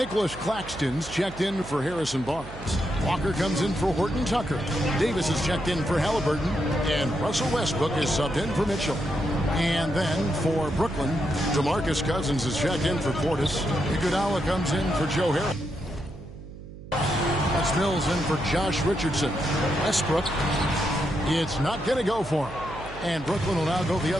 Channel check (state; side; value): noise; right; hum, 14 dB below the sound